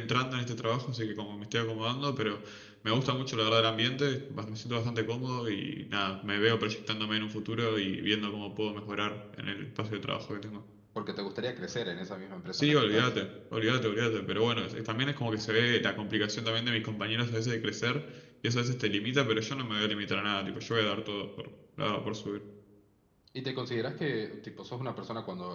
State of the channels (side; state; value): both; identical; correlation 1.00